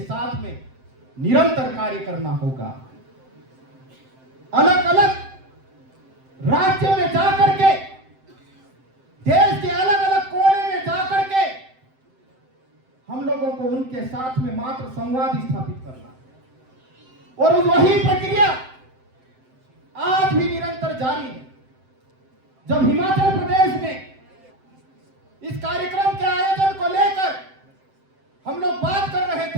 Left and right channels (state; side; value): late; left; 7.7 ms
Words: साथ में निरंतर कार्य करना होगा। अलग अलग राज्यों में जाकर के, देश के अलग अलग कोने में जाकर के हम लोगों को उनके साथ में मात्र संवाद स्थापित करना, और वही प्रक्रिया आज भी निरंतर जारी है। जब हिमाचल प्रदेश में इस कार्यक्रम के आयोजन को लेकर हम लोग बात कर रहे